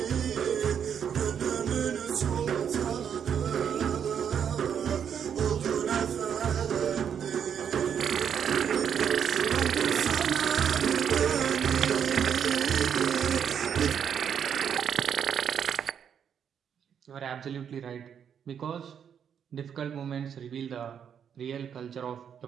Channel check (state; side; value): quieter; left; 8.1 dB